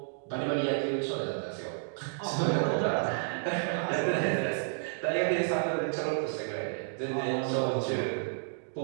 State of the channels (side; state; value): left; silent; digital silence